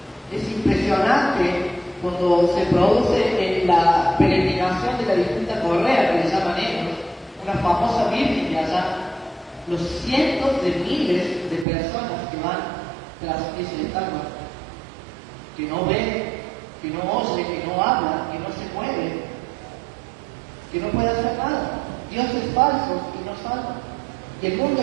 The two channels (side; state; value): left; drops out; at 11.7 s